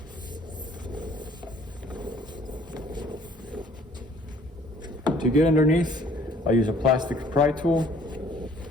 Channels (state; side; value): normal; both; correlation 0.57